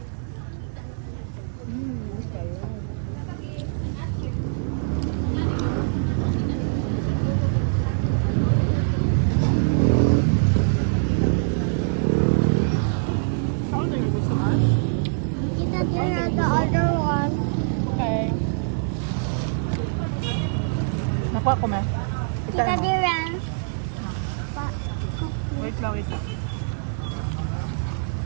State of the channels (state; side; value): silent; left; digital silence